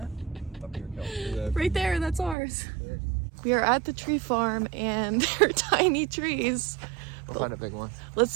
Up here, Kel. Right there, that's ours. We are at the tree farm and they're tiny trees. We'll find a big one. Let's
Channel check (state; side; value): drops out; left; at 2.4 s